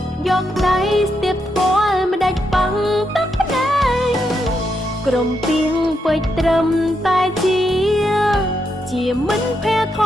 យកដៃស្ទាបស្គាល់មិនដាច់ប៉ងទឹកភ្នែកក្រុមពីងពេចត្រឹមតែជាមិនភ័យធ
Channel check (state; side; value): normal; both; correlation 0.81